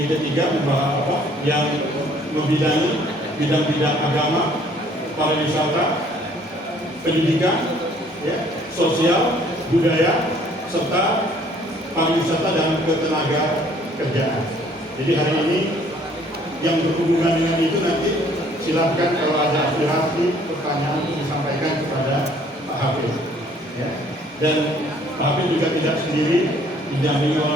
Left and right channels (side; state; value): both; normal; correlation 0.59